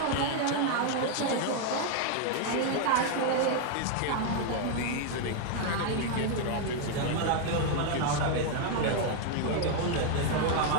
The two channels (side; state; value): both; different; correlation 0.00